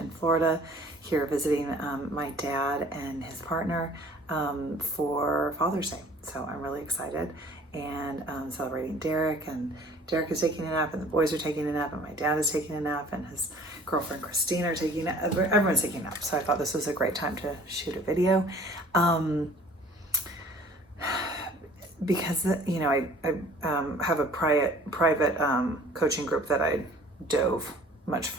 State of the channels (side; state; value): both; normal; correlation 0.51